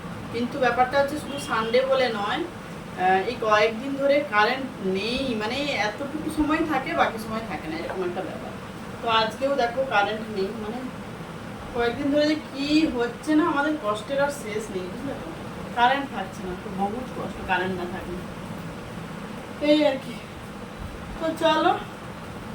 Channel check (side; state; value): both; identical; correlation 1.00